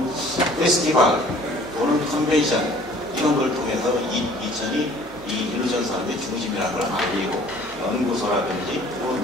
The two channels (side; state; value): both; normal; correlation 0.53